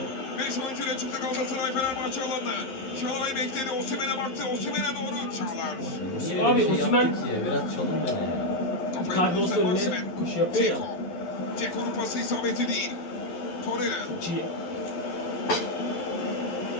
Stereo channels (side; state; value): right; late; 11 ms